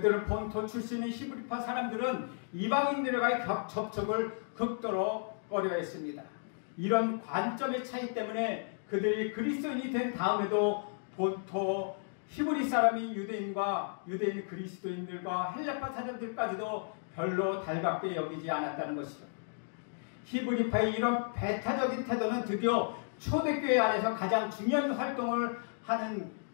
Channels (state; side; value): silent; right; digital silence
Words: 본토 출신의 히브리파 사람들은 이방인들과의 접촉을 극도로 꺼려했습니다. 이런 관점의 차이 때문에 그들이 그리스도인이 된 다음에도 본토 히브리 사람인 유대인 그리스도인들과 헬라파 사람들까지도 별로 달갑게 여기지 않았다는 것이죠. 히브리파의 이런 배타적인 태도는 드디어 초대교회 안에서 가장 중요한 활동을 하는